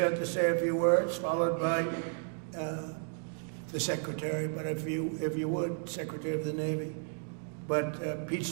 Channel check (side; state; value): left; silent; 56 dB below the other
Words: to say a few words, followed by the Secretary, but if you would, Secretary of the Navy. But Pete's